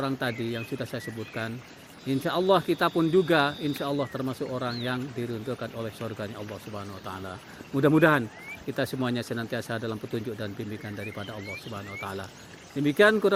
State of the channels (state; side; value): identical; both; correlation 1.00